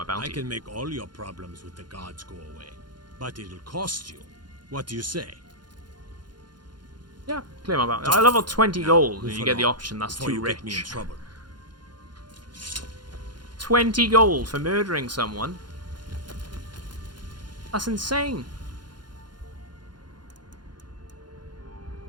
bounty. I can make all your problems with the guards go away, but it'll cost you. What do you say? Yeah, clear my bounty. I level 20 gold, and you get the option that's too rich. Get me in trouble. 20 gold for murdering someone? That's insane.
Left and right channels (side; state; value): left; late; 0.71 ms